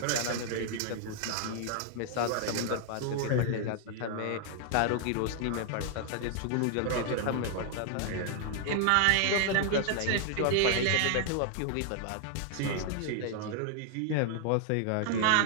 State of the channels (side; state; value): both; different; correlation 0.00